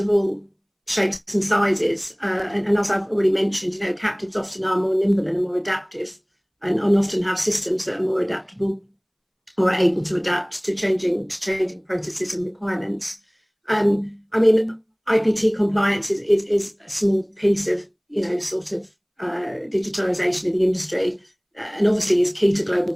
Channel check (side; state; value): both; identical; correlation 1.00